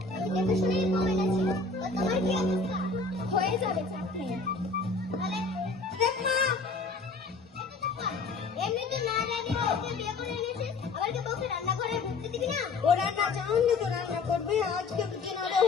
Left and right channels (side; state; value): right; quieter; 4.0 dB